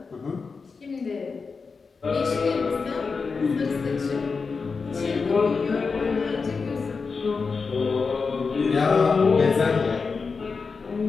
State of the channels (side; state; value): right; quieter; 4.8 dB